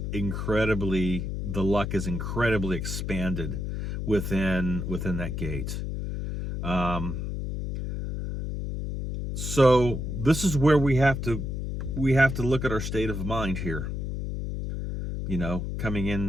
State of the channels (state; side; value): noise; left; hum, 4 dB below the sound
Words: the luck is incredibly expanded within that gate. So this is where we have to look at our state of mind here. You know, coming